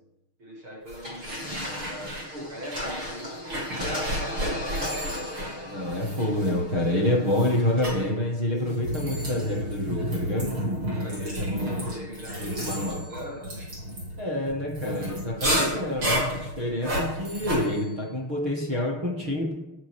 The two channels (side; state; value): left; late; 6.5 ms